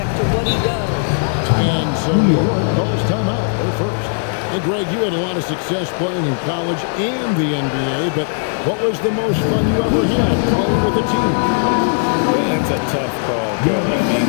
to what he does. And so New York calls timeout. They're first. Hey, Greg, you had a lot of success playing in college and the NBA, but what was the most fun you ever had playing with a team? That's a tough call, Kevin. I mean,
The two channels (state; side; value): silent; right; 61 dB below the other